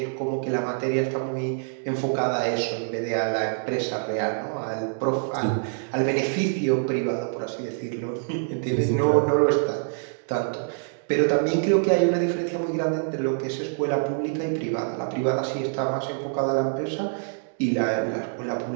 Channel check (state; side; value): silent; left; digital silence